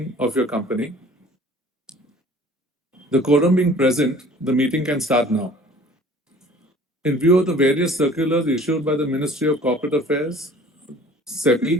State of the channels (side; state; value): both; normal; correlation 0.49